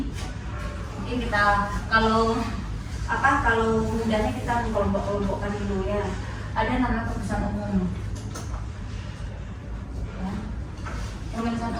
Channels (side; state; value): both; identical; correlation 1.00